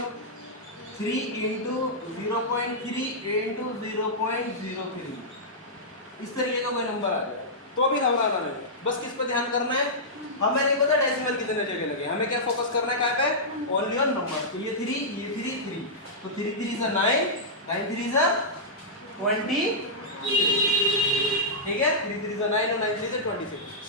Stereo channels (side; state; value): both; normal; correlation -0.13